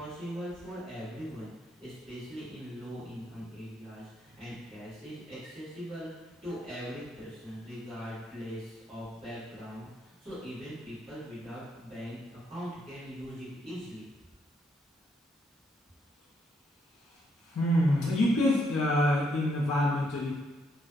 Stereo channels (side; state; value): both; normal; correlation 0.75